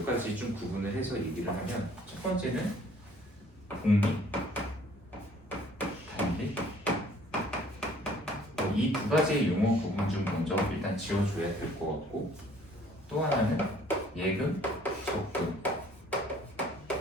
가지 좀 구분을 해서 얘기를 하면 첫 번째는 복리, 단리 이 두 가지의 용어 부분 좀 먼저 일단 지워줘야 될 것 같고 또 하나는 예금, 적금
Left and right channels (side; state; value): both; normal; correlation 0.57